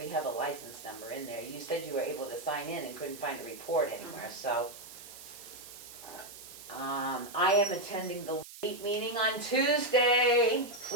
have a license number in there. You said you were able to sign in and couldn't find a report anywhere, so. I am attending the LEAP meeting on Tuesday.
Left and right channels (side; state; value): right; noise; hiss, 15 dB below the sound